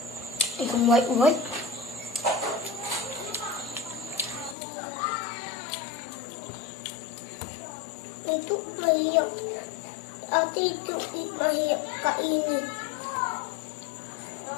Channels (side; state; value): right; drops out; at 4.5 s